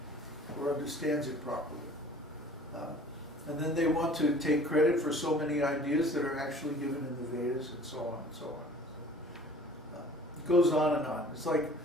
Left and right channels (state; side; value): normal; both; correlation 0.48